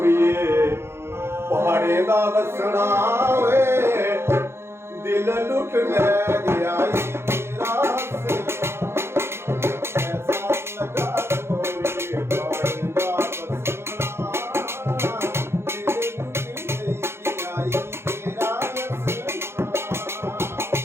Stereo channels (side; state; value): left; late; 0.12 ms